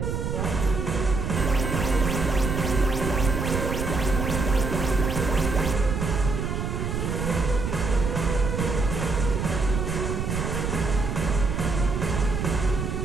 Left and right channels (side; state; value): right; noise; rumble, 2 dB below the sound